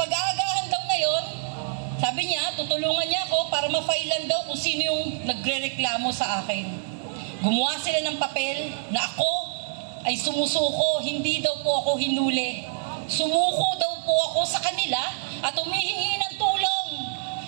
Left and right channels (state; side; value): silent; left; 61 dB below the other